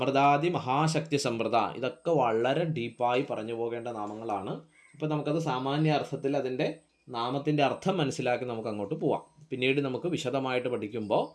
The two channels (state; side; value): identical; both; correlation 1.00